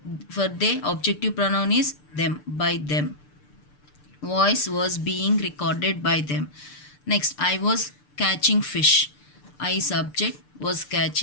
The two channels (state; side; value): late; right; 6.8 ms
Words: For they, objective pronoun is them, by them. Voice was being recorded by them. Next, I was catching fish. I subject, was